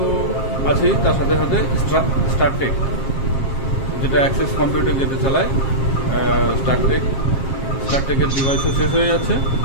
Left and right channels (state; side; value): late; right; 7.5 ms